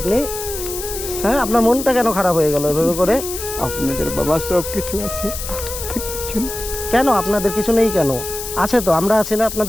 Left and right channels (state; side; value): noise; left; hiss, 8 dB below the sound